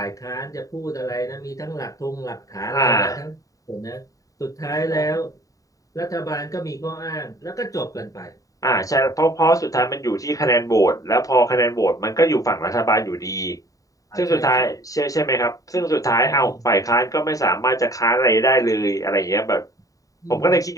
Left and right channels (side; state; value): right; late; 0.16 ms